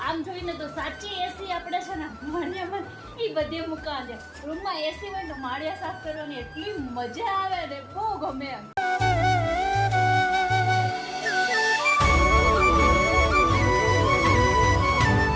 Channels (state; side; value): identical; both; correlation 1.00